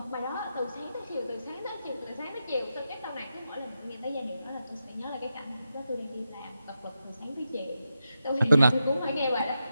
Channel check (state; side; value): inverted; both; correlation -0.88